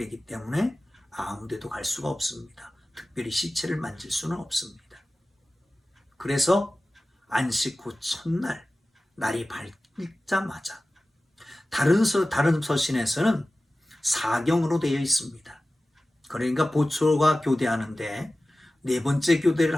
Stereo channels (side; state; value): both; normal; correlation 0.96